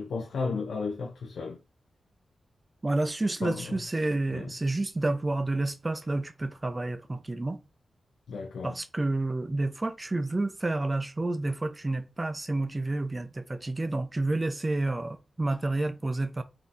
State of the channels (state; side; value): normal; both; correlation 0.97